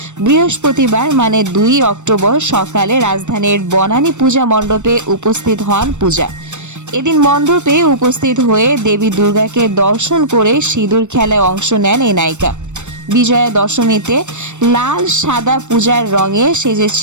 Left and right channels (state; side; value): late; left; 0.84 ms